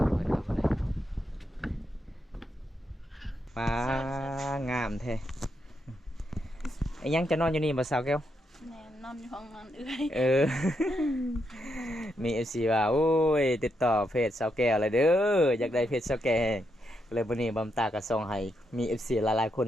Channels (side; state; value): both; normal; correlation 0.81